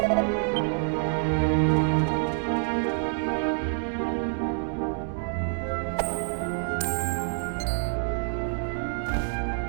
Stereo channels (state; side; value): silent; left; digital silence